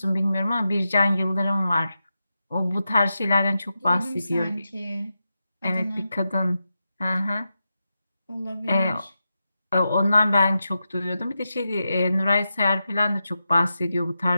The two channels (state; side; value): inverted; both; correlation -0.89